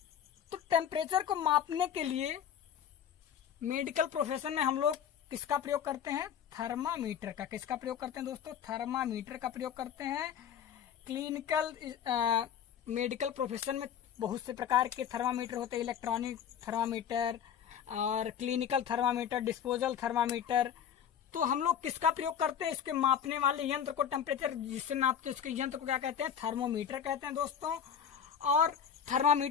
तो टेम्परेचर को मापने के लिए मेडिकल प्रोफेशन में हम लोग किसका प्रयोग करते हैं, थर्मामीटर का। किसका प्रयोग करते हैं दोस्तों, थर्मामीटर का प्रयोग करते हैं। क्लिनिकल मेडिकल प्रोफेशन में बहुत से प्रकार के थर्मामीटर होते हैं, इलेक्ट्रॉनिक थर्मामीटर और क्लिनिकल थर्मामीटर, डिस्पोजल थर्मामीटर। तो हम लोग किसका प्रयोग करते हैं, इसके मापने वाले यंत्र को, टेम्परेचर जिससे नापते हैं उसके यंत्र को क्या कहते हैं, थर्मोमीटर कहते हैं दोस्तों। और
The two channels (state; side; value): quieter; right; 8.5 dB